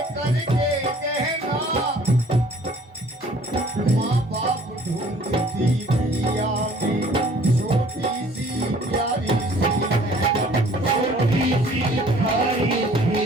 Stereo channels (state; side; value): normal; both; correlation 0.55